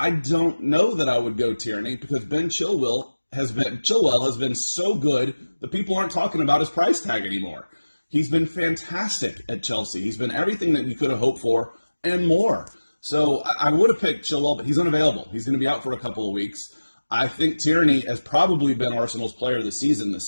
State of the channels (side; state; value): both; inverted; correlation -1.00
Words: don't know that I would go Tierney because Ben Chilwell has been so good that people aren't talking about his price tag anymore. He's been fantastic at Chelsea. He's been everything that we could have hoped for and more. So I would have picked Chilwell, but he's unavailable. He's going to be out for a couple of weeks. I think Tierney has probably been Arsenal's player of the season